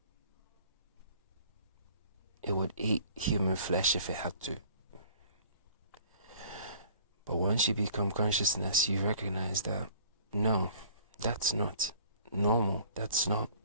It would eat human flesh if it had to. But once you become consciousness, you recognize that, no, that's not normal. That's not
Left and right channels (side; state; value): both; inverted; correlation -0.52